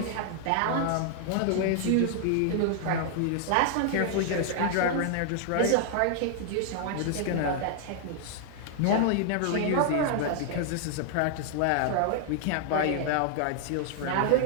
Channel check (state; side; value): different; both; correlation 0.00